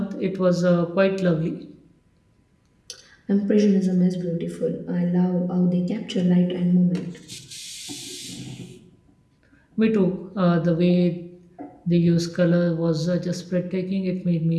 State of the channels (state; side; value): identical; both; correlation 1.00